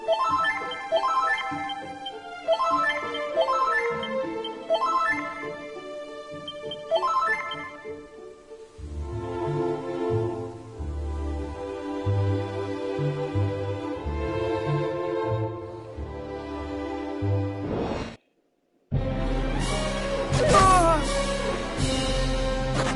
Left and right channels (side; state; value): both; identical; correlation 1.00